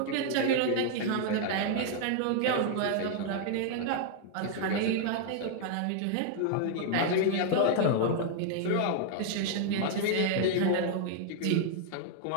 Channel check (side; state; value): both; different; correlation 0.00